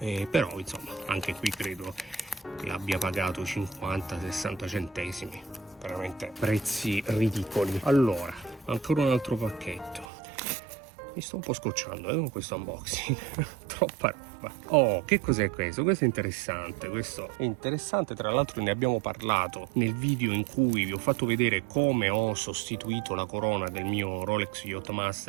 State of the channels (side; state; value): left; drops out; at 10.1 s